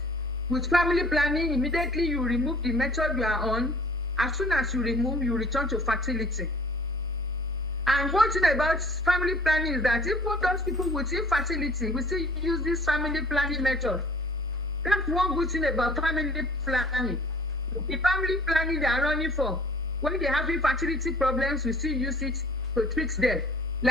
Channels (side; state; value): both; normal; correlation 0.51